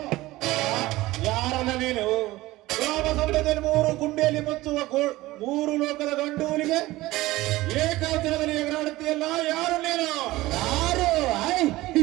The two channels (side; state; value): left; quieter; 18.2 dB